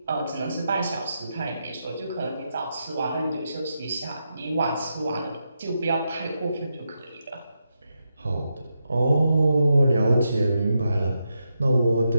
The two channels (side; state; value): both; inverted; correlation -0.85